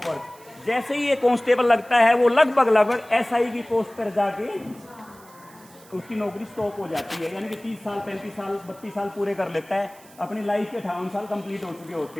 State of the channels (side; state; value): right; noise; hiss, 24 dB below the sound